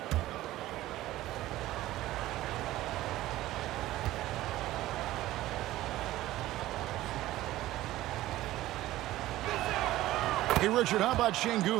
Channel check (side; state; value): left; quieter; 15.8 dB